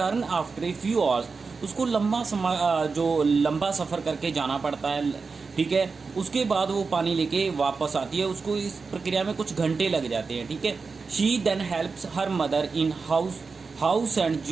after a few hours. उसको लंबा सफ़र करके जाना पड़ता है, ठीक है। उसके बाद वो पानी लेके वापस आती है, उसको इस प्रक्रिया में कुछ घंटे लग जाते हैं, ठीक है। She then helps her mother in house and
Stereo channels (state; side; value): quieter; left; 4.6 dB